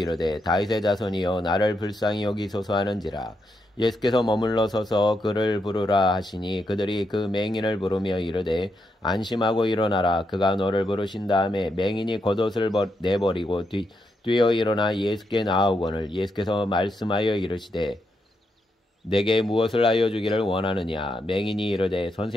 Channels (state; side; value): normal; both; correlation 0.82